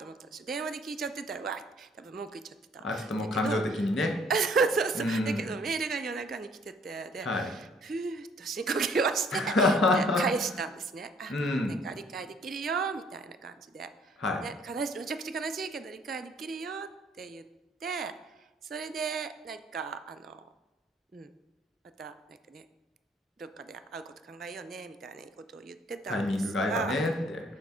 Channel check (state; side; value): normal; both; correlation 0.61